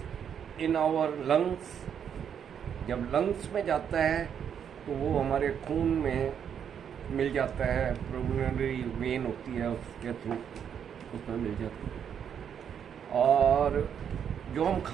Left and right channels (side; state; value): left; quieter; 8.2 dB